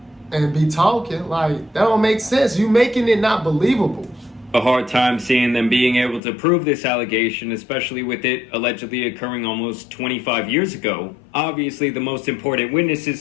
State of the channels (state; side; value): drops out; right; at 6.2 s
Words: and be talking. Like, that don't make sense. You making it not believable. A hard time seeing them being able to prove this allegation, especially with it allegedly occurring almost 25 years ago. Obviously, the most important witnesses